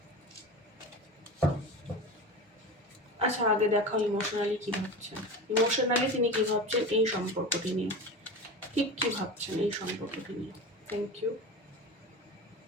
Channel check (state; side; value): normal; both; correlation 0.29